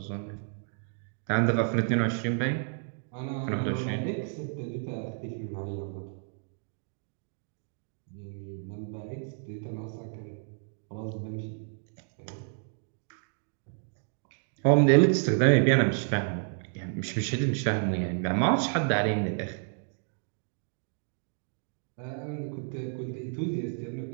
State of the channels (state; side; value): silent; left; 57 dB below the other